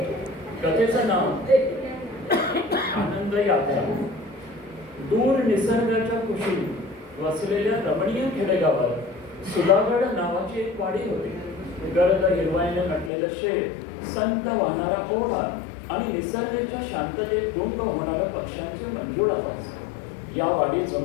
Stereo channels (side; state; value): right; drops out; at 13.1 s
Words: कथेचं नाव आनंद यात्रा. दूर निसर्गाच्या कुशीत वसलेल्या रमणीय खेडेगावात सुधागड नावाची एक वाडी होती. गर्द हिरवाईने नटलेलं शेत, संत वाहणारा ओढा आणि निसर्गाच्या शांततेत गुंग होणाऱ्या पक्ष्यांचे मंजूळ आवाज या वाडीत